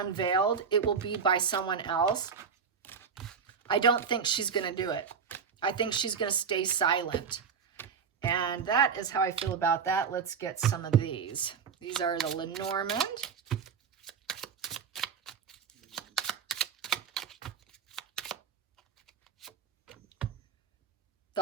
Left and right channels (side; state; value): left; quieter; 6.3 dB